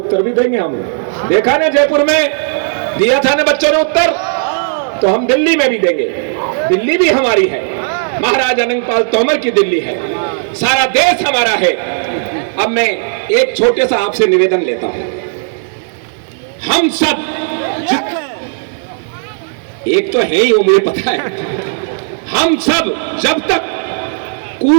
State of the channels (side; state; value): left; silent; digital silence